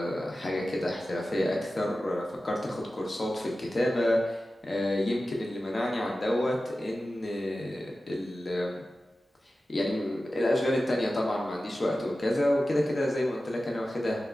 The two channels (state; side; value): normal; both; correlation 0.94